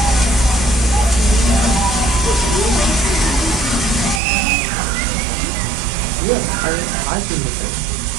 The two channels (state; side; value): drops out; left; at 4.2 s